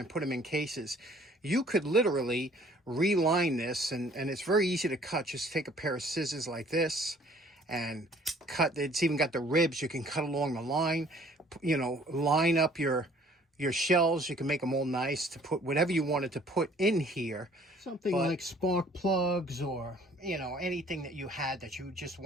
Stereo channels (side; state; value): both; normal; correlation 0.56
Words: put them in cases. You could literally reline this, and it's very easy to cut. Just take a pair of scissors like this and cut. It's even got the ribs. You can cut along the line, you know, line up your shells. You can make them all nice to put whatever you wanted to put in here. Something like spark plugs or, you know, anything that you had that you just